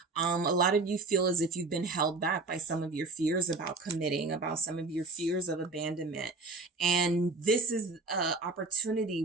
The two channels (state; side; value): quieter; left; 3.6 dB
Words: A lot of you feel as if you've been held back by some of your fears about committing, about some of your fears of abandonment. And this is an opportunity